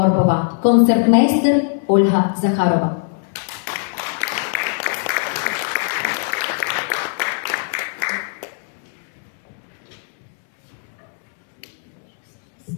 концертмейстер Ольга Захарова.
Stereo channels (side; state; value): right; silent; 66 dB below the other